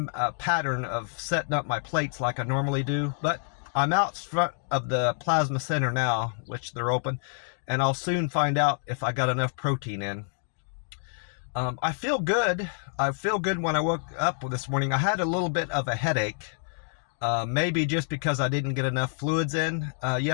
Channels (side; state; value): right; silent; digital silence